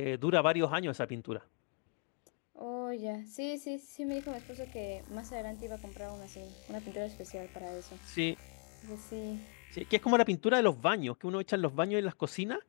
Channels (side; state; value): right; quieter; 37.6 dB